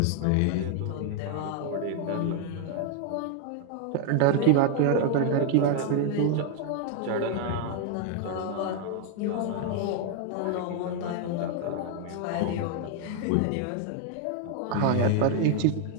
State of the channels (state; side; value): different; both; correlation 0.00